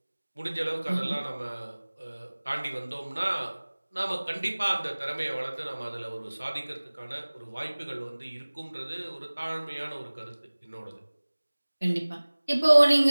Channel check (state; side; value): inverted; both; correlation -1.00